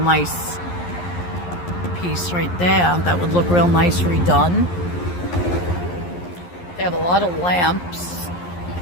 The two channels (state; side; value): late; right; 11 ms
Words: piece right there. That would look real nice redone. They have a lot of lamps.